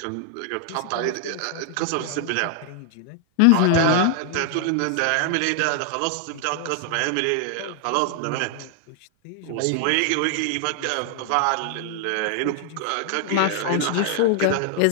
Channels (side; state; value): both; different; correlation 0.00